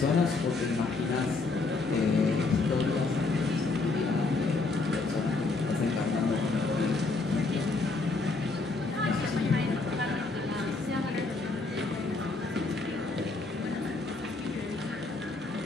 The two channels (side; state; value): right; quieter; 3.7 dB